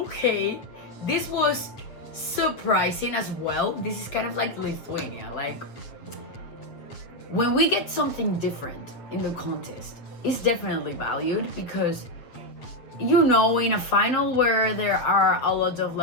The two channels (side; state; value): right; late; 8.2 ms